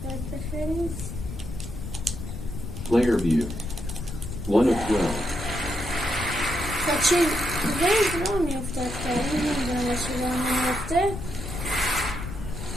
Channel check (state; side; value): noise; left; rumble, 8 dB below the sound